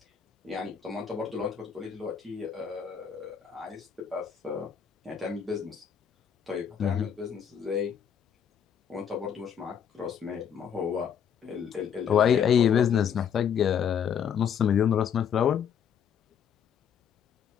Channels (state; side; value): quieter; right; 8.1 dB